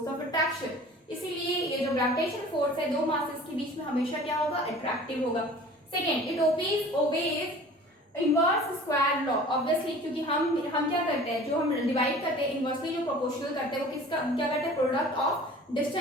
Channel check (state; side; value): normal; both; correlation 0.45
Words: of attraction. इसीलिए ये जो ग्रेविटेशनल फोर्स है दो मासेस के बीच में हमेशा क्या होगा, अट्रैक्टिव होगा। Second, it obeys inverse square law, obviously क्योंकि हम क्या करते हैं, जो हम डिवाइड करते हैं इनवर्सली जो प्रोपोर्शनल करते हैं वो किसका क्या करते हैं, product of